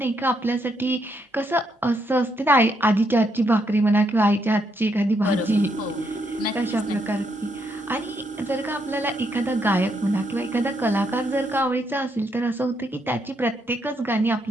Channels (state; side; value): normal; both; correlation 0.76